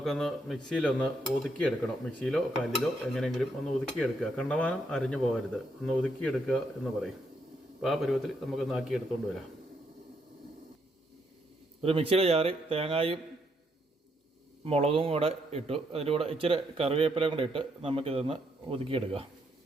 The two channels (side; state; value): both; normal; correlation 0.75